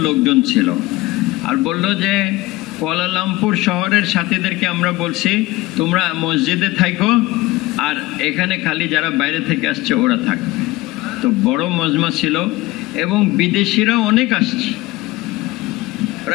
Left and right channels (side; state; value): right; quieter; 19.4 dB